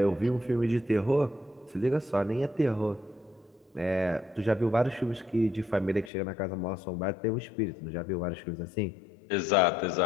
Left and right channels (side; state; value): right; drops out; at 6.1 s